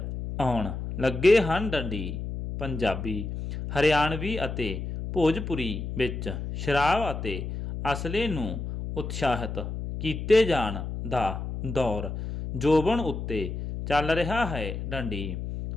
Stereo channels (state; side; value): noise; left; hum, 6 dB below the sound